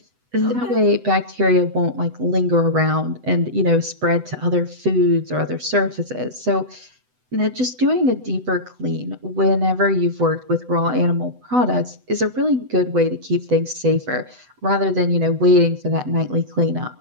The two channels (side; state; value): left; late; 8.0 ms